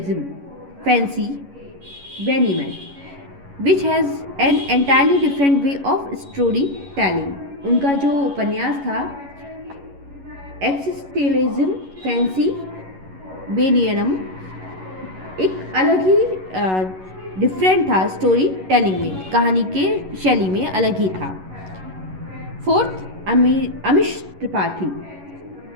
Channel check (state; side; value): late; left; 11 ms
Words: Fancy Benjamin, which has an entirely different way of storytelling. उनका जो उपन्यास था एक्सिस्टेलिज्म फैंसी बेनियनम एक अलग ही डिफरेंट था. स्टोरी टेलिंग में, कहानी के शैली में अलग ही था. Fourth, Amish Tripathi.